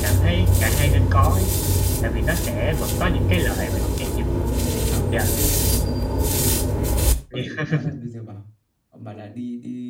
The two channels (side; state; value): both; identical; correlation 1.00